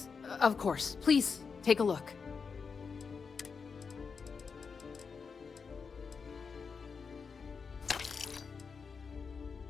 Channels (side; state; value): right; quieter; 5.5 dB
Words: of course. Please, take a look.